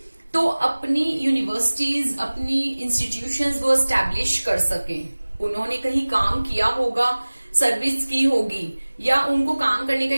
तो अपनी यूनिवर्सिटीज, अपनी इंस्टीट्यूशंस वो एस्टैब्लिश कर सके। उन्होंने कहीं काम किया होगा, सर्विस की होगी, या उनको काम करने का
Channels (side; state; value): both; inverted; correlation -1.00